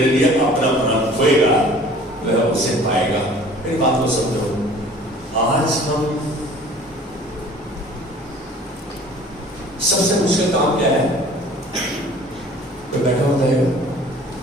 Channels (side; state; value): both; normal; correlation 0.48